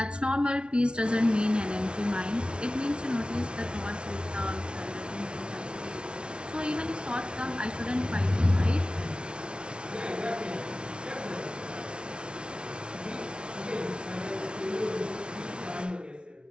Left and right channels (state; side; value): late; left; 0.057 ms